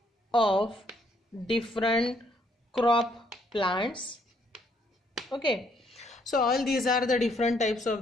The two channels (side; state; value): both; normal; correlation 0.69